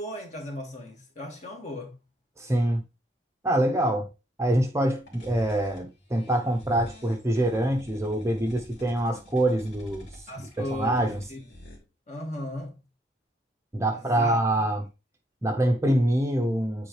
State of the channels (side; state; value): both; normal; correlation 0.71